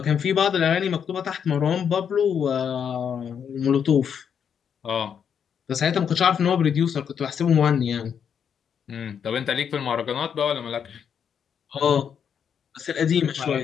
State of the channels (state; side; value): quieter; right; 7.7 dB